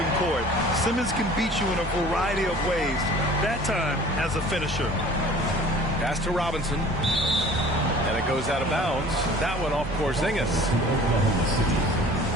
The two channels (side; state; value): both; normal; correlation 0.47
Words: court. Simmons can beat you in a variety of ways, that time as a finisher. Pass to Robinson. And it goes out of bounds. That one off Porzingis.